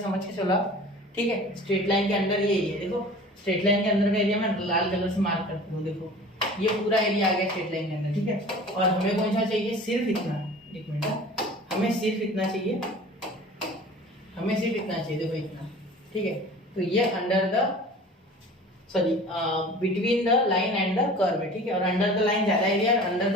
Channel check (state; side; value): normal; both; correlation 0.42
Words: समझ के चलो आप, ठीक है, स्ट्रेट लाइन के अंदर ये एरिया, देखो स्ट्रेट लाइन के अंदर का एरिया मैं लाल कलर से मार्क करती हूँ, देखो ये पूरा एरिया आ गया स्ट्रेट लाइन के अंदर, ठीक है। और हमें कौन सा चाहिए, सिर्फ इतना, एक मिनट, हमें सिर्फ इतना चाहिए, देखो इतना, ठीक है। तो ये under the, sorry between the line and the curve है, ठीक है, और अंडर द लाइन ज्यादा एरिया और अंडर